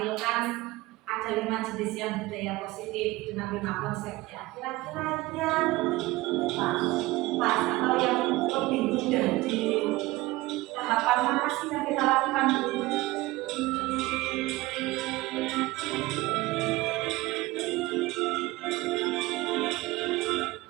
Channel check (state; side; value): quieter; left; 19.9 dB